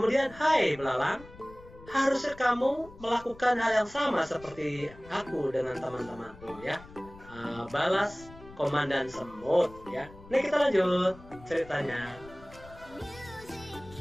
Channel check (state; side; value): noise; left; rumble, 20 dB below the sound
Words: hai belalang, harusnya kamu melakukan hal yang sama seperti aku dengan teman-temanku ya. Balas komandan semut ya. Ini kita lanjut ceritanya.